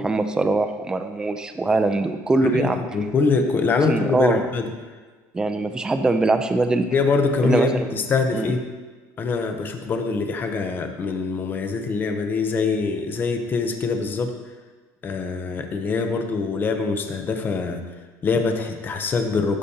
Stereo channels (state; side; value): normal; both; correlation 0.69